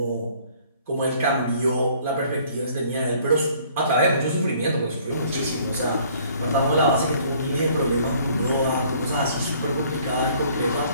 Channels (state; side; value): inverted; both; correlation -0.58